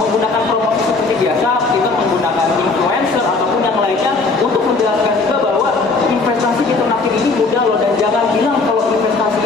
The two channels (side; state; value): right; quieter; 3.9 dB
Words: promosi seperti biasa, kita menggunakan influencer ataupun yang lainnya untuk menjelaskan juga bahwa investasi di ternakin ini mudah loh, dan jangan bilang kalau investasi